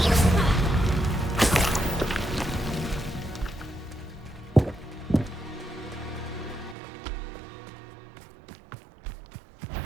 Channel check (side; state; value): left; drops out; at 6.8 s